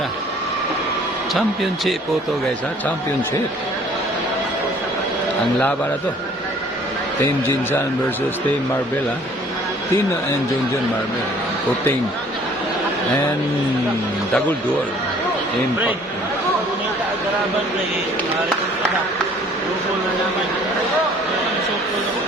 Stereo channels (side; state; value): both; normal; correlation 0.55